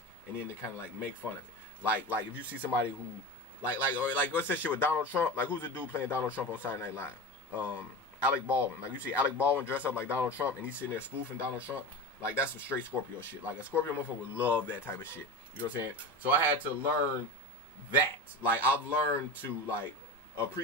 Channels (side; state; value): both; normal; correlation 0.27